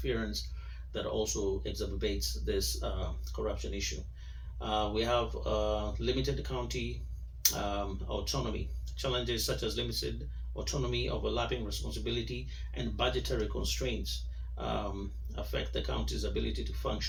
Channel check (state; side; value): identical; both; correlation 1.00